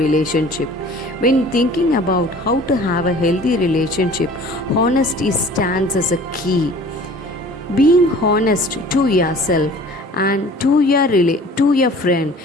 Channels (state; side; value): normal; both; correlation 0.47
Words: When thinking about how to have a healthy relationship, honesty stands as a key. Being honest to yourself and to your friend,